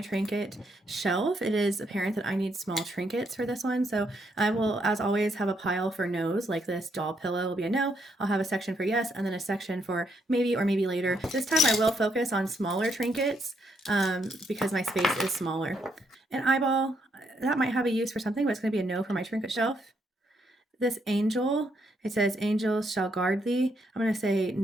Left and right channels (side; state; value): both; normal; correlation 0.75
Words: trinket shelf, it is apparent that I need small trinkets for this one. So I will, as always, have a pile for no's, like this doll pillow will be a no. I'll have a section for yes, and then a section for maybe or maybe later. This time I will focus on smaller trinkets because my space is smaller. An eyeball, that might have a use for something, but it's going to be a no for my trinket shelf. This angel, it says angels shall guard thee. I'm going to say